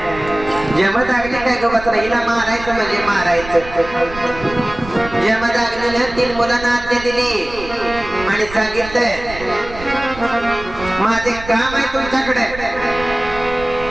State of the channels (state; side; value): noise; right; rumble, 14 dB below the sound